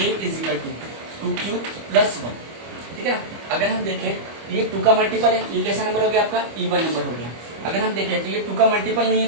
is equal to 2q plus 1, ठीक है ना। अगर हम देखें ये 2 का मल्टीपल है, ये कैसा नंबर हो गया आपका, इवन नंबर हो गया। अगर हम देखें तो ये 2 का मल्टीपल नहीं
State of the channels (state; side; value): late; left; 25 ms